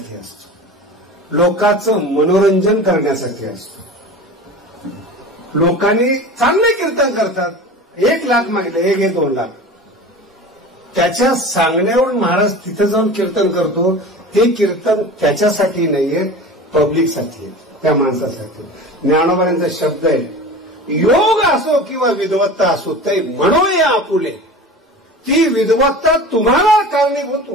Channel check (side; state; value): both; normal; correlation 0.35